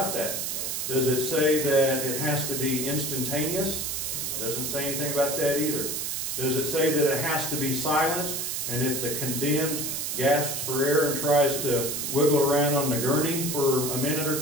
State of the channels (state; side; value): noise; right; hiss, 2 dB below the sound